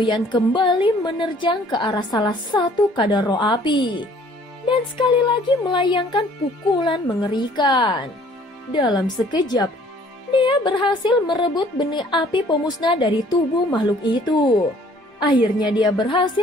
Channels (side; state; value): both; normal; correlation 0.57